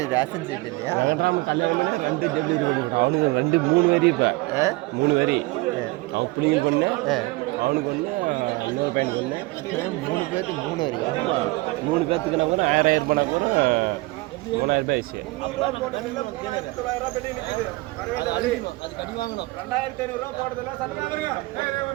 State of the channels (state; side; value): quieter; left; 22.3 dB